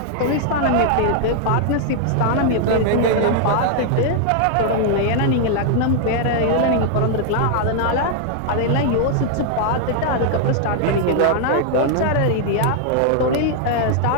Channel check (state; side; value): different; both; correlation 0.00